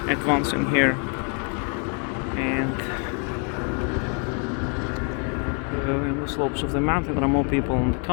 advancing here, and in the slopes of the mountain there are more people on the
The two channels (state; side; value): quieter; right; 39.1 dB